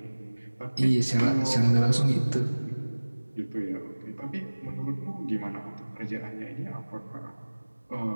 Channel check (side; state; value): both; inverted; correlation -1.00